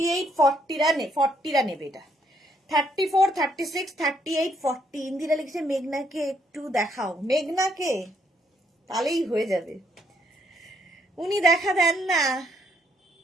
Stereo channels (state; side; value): normal; both; correlation 0.71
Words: 40 নেবে এটা। 34, 36, 38, 40। ইন্দিরা লিখেছে মেঘনাকে একটু দেখাও। মেঘনাকে তাহলেই হয়ে যাবে, উনি দেখা দেন না।